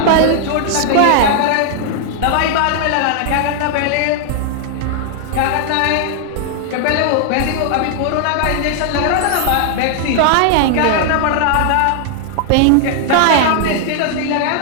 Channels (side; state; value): both; different; correlation 0.00